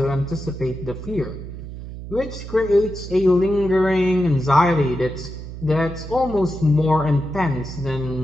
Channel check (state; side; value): noise; right; hum, 11 dB below the sound